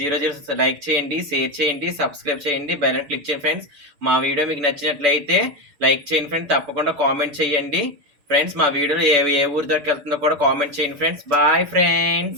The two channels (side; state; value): left; late; 6.9 ms